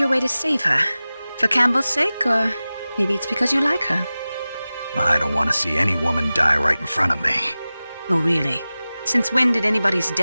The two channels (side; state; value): both; inverted; correlation -0.97